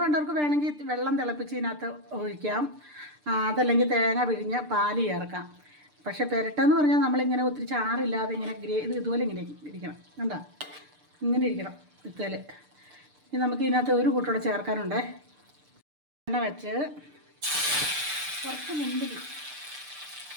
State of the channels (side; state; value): left; late; 6.7 ms